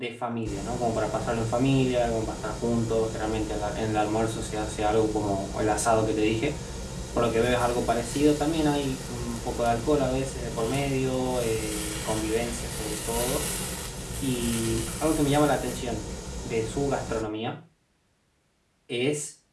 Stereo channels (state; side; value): identical; both; correlation 1.00